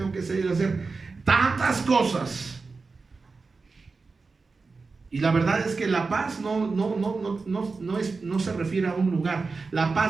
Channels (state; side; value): quieter; left; 4.2 dB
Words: que salir a hacer tantas cosas. Y la verdad es que la paz no se refiere a un lugar. La